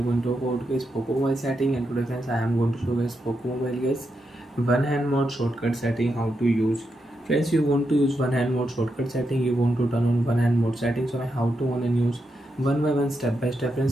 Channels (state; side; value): normal; both; correlation 0.84